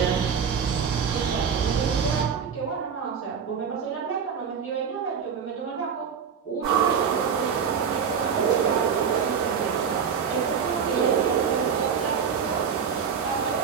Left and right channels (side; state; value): left; quieter; 6.9 dB